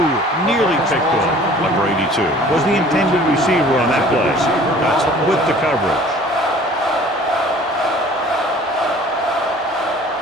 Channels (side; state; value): both; normal; correlation 0.49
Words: nearly picked off. Number 82 was the intended receiver on that play. That's with the coverage.